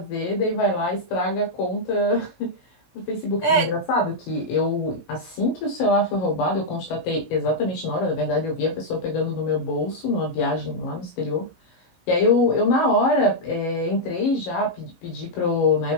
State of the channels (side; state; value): right; late; 17 ms